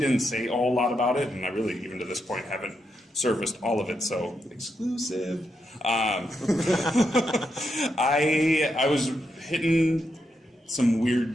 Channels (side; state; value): both; normal; correlation 0.83